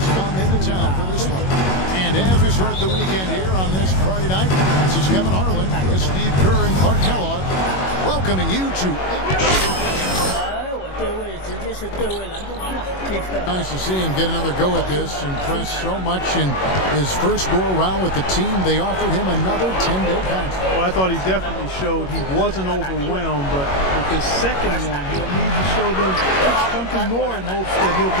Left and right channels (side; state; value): right; late; 21 ms